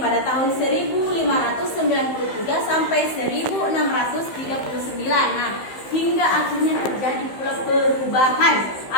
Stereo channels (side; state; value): right; late; 15 ms